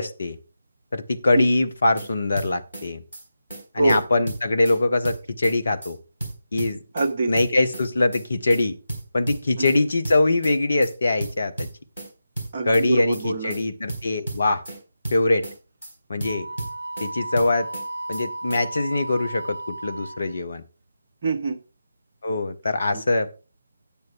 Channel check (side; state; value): both; inverted; correlation -0.91